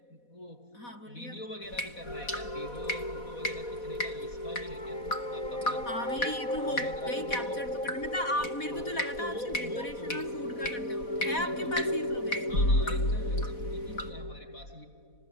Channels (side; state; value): right; late; 4.1 ms